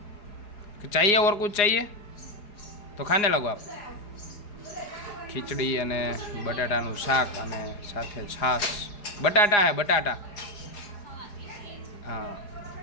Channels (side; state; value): right; late; 4.9 ms